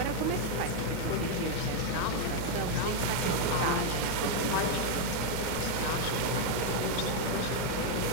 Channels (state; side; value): different; both; correlation 0.01